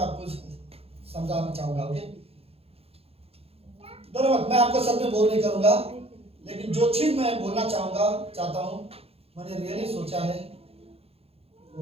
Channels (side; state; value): left; late; 0.29 ms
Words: आपको समझाना चाहूंगा। ओके, धन्यवाद। मैं आपको सब में बोल नहीं करूंगा, लेकिन जो चीज मैं बोलना चाहता हूँ, मैंने रियली सोचा है